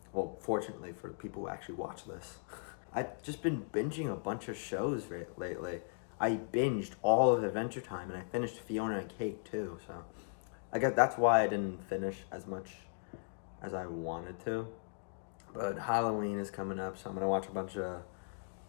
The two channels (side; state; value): right; silent; digital silence